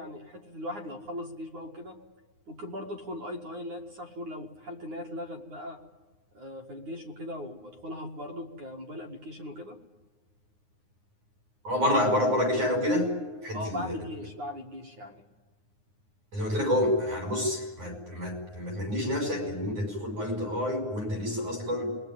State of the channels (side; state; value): left; late; 9.6 ms